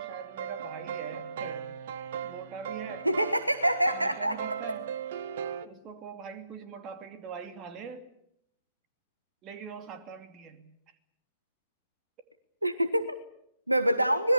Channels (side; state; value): both; inverted; correlation -0.84